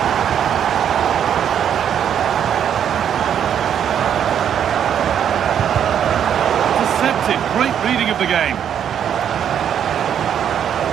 Great reading of the game.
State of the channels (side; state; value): left; quieter; 9.0 dB